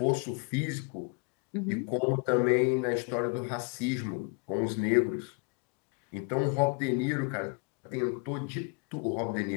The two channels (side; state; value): right; quieter; 33.3 dB